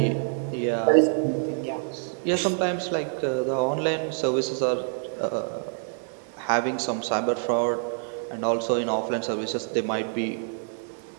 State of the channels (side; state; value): left; silent; digital silence